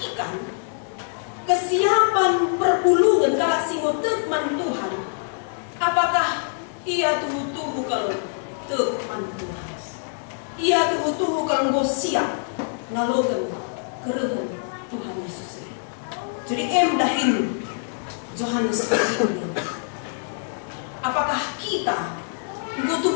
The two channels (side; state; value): right; silent; digital silence